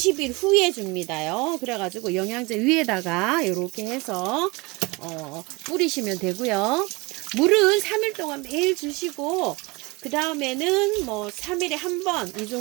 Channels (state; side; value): quieter; left; 25.3 dB